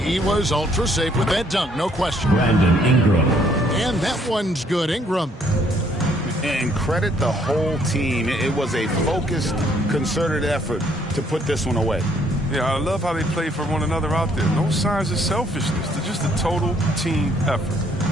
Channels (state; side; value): normal; both; correlation 0.66